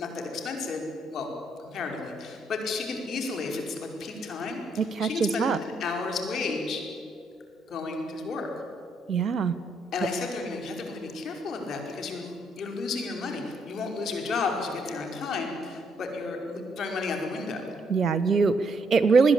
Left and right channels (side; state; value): both; normal; correlation 0.73